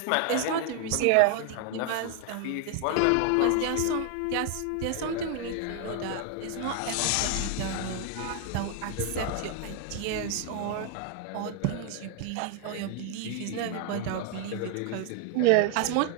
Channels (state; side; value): different; both; correlation 0.00